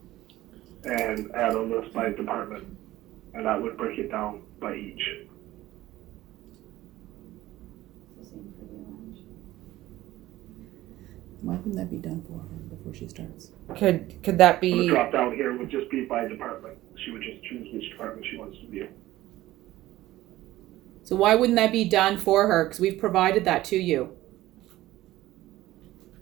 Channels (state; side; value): quieter; left; 16.0 dB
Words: and add a list by department, and that would break it down by each. Why wouldn't that be done for her before she starts? Could that The be? drop down here would just be by department. She would just choose which department she wants to view. So why wouldn't that be done for her? Because we've provided that to you.